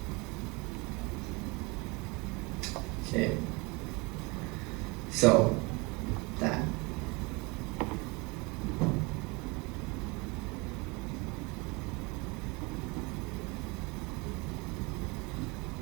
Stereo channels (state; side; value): quieter; left; 27.1 dB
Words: Okay, so that.